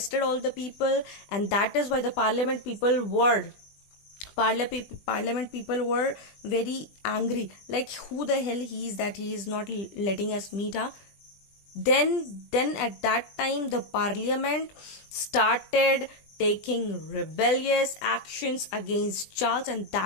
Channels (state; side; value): late; right; 20 ms